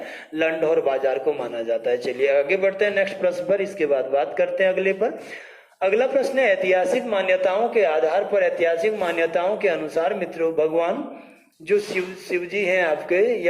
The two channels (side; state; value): both; identical; correlation 1.00